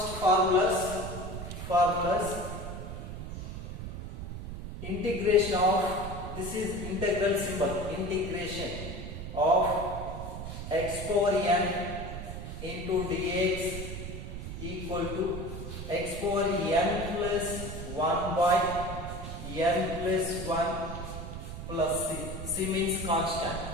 formulas integration of, this is integral symbol, integration of x power n into dx equal to x power n plus 1 by n plus 1 plus c. C means constant.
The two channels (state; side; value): noise; right; rumble, 8 dB below the sound